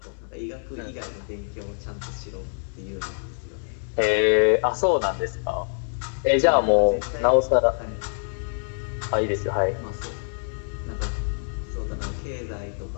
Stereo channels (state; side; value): silent; right; digital silence